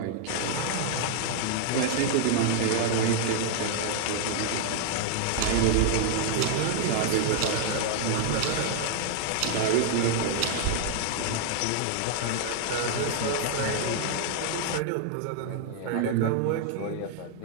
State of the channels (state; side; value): different; both; correlation 0.00